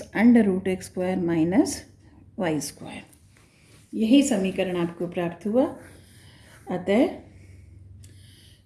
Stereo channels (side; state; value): both; identical; correlation 1.00